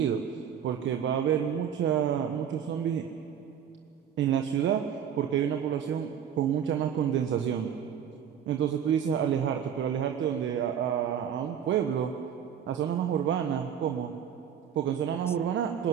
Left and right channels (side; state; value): left; quieter; 8.6 dB